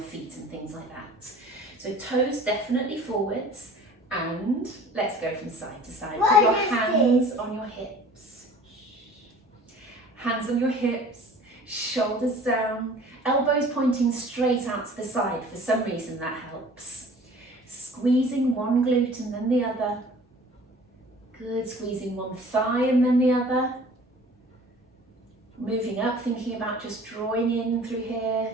and things like that. So toes definitely forwards, and let's go from side to side. Put your hands on your hips. Hands on your hips, shoulders down, elbows pointing straight out to the side. For some reason that helps. Squeezing one glute and then the other. Good, squeezing one thigh and then the other. Moving up, thinking about just drawing in through here.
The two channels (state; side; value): normal; both; correlation 0.47